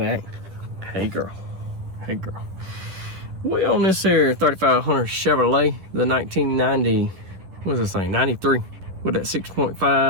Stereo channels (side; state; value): left; late; 11 ms